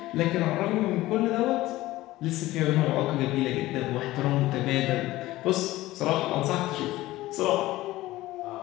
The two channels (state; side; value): quieter; right; 17.2 dB